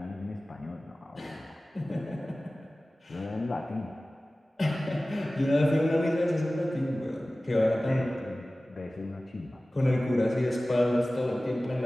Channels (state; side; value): normal; both; correlation 0.97